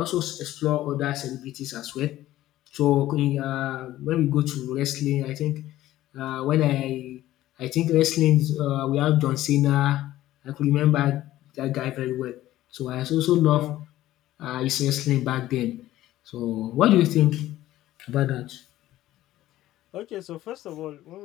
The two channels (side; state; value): right; quieter; 14.7 dB